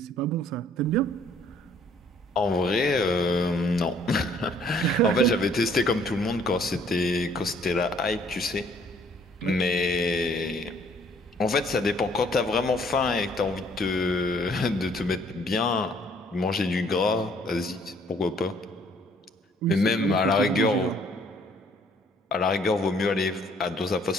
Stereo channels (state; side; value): normal; both; correlation 0.61